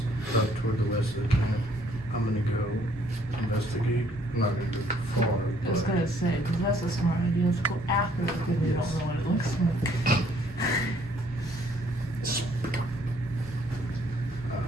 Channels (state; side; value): normal; both; correlation 0.64